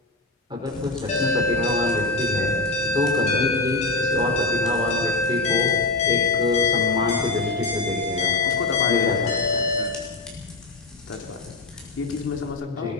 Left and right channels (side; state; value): right; quieter; 3.3 dB